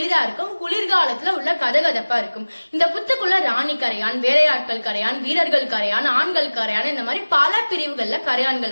இருக்கும், குளிர்காலத்துல உள்ள கதகதப்பா இருக்கும். இந்த புத்துக்குள்ள ராணி கரையான், வேலையாட்கள் கரையான், வீரர்கள் கரையான், ஆண்கள் கரையான், இந்த மாதிரி பல பிரிவுகள்ல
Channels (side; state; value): both; inverted; correlation -1.00